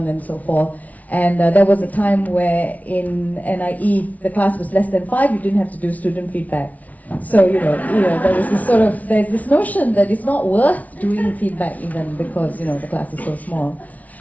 and so forth. And there was a time where in NIE, the class was less than 5, you didn't have to do student feedback. So, there was there's this notion that it's not worth doing feedback even because, the class is so small.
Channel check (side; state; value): right; late; 0.071 ms